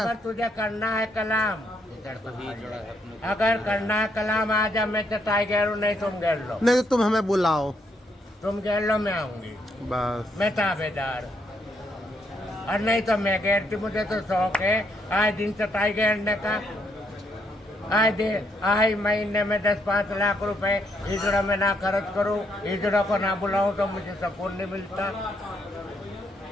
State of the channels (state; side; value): normal; both; correlation 0.75